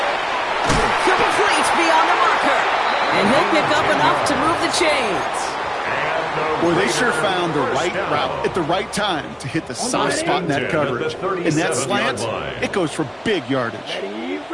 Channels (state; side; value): identical; both; correlation 1.00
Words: Complete beyond the marker. And he'll pick up enough to move the chains. Boy, they sure found the right route at the right time to hit the soft spot in that coverage. In that slant, it goes for big yardage. Ready,